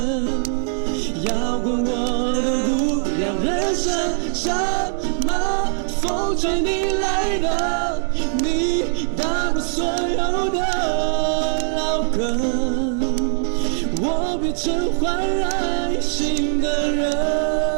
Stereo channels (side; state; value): left; silent; digital silence